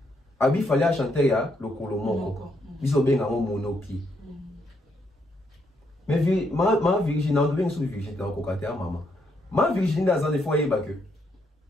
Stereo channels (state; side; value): normal; both; correlation 0.76